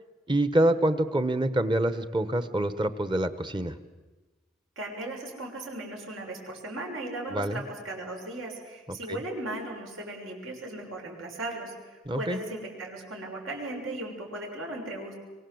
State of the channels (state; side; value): normal; both; correlation 0.72